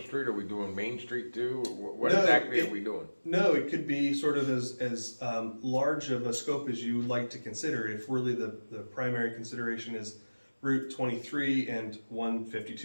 Street, or are we doing Main Street too? What No, exactly are we doing? No, it could be sort of as large of a scope as you would like to consider. If really the primary consideration is Route 23 and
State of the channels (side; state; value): both; inverted; correlation -1.00